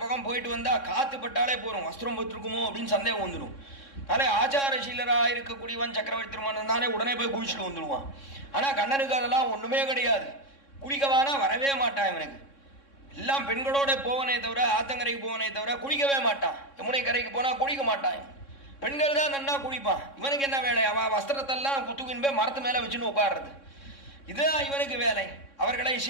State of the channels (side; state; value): right; late; 3.6 ms